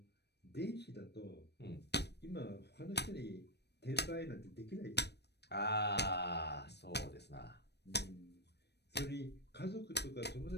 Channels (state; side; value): late; right; 0.49 ms